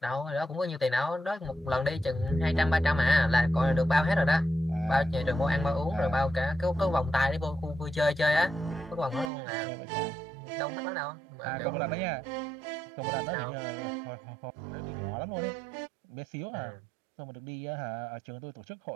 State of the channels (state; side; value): drops out; left; at 9.3 s